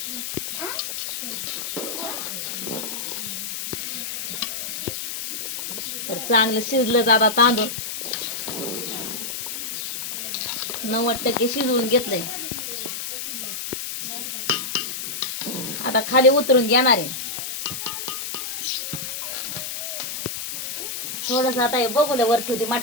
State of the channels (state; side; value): noise; left; hiss, 5 dB below the sound